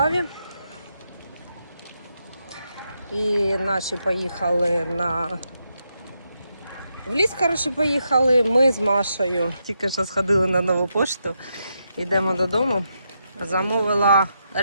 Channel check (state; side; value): inverted; both; correlation -0.83